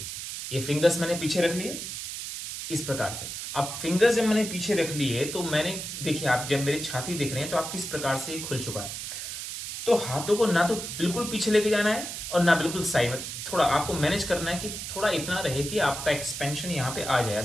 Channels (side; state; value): right; noise; hiss, 7 dB below the sound